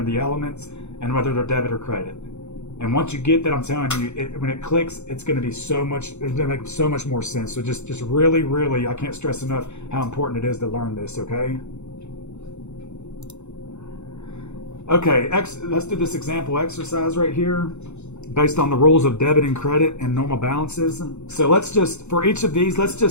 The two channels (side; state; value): right; late; 0.82 ms